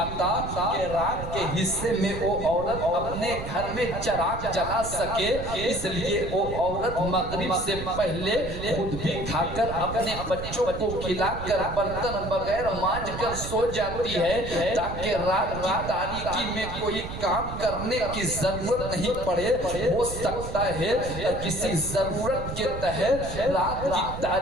کہ رات کے حصے میں وہ عورت اپنے گھر میں چراغ جلا سکے، اس لیے وہ عورت مغرب سے پہلے خود بھی کھا کر اپنے بچوں کو کھلا کر برتن بغیر مانج کر سو جاتی ہے تاکہ رات کی تاریکی میں کوئی کام کرنے کی ضرورت نہیں پڑے۔ ہو سکتا ہے کسی ضرورت کے تحت رات کی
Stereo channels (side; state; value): right; noise; rumble, 8 dB below the sound